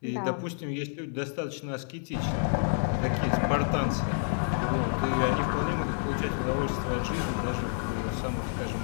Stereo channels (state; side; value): silent; right; digital silence